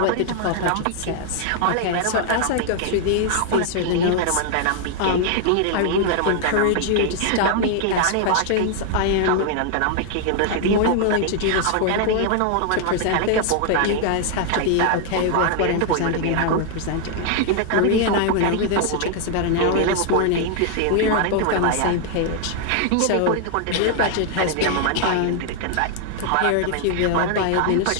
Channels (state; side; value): different; both; correlation 0.00